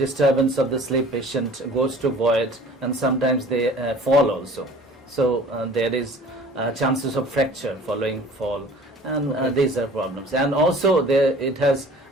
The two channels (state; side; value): normal; both; correlation 0.47